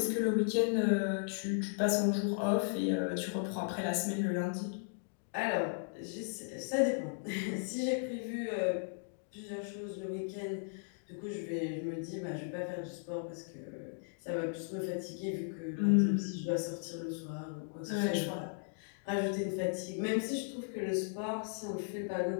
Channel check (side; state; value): right; silent; digital silence